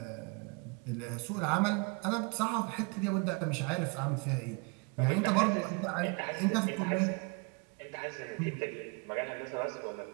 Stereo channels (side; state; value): left; quieter; 30.3 dB